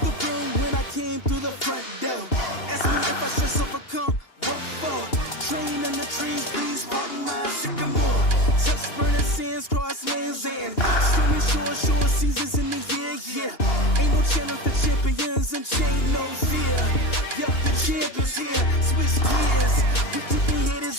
room when I came through the front door. Ask me if I should overcome, what for? Train in the trees, please pardon my sycamore. Touch burning sands, cross lands and stormy shore seasons in the year, yeah. Ain't no channel for champions and chain no fear. Yeah, the champ is here, switch gears. With keeping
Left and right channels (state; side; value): late; right; 2.8 ms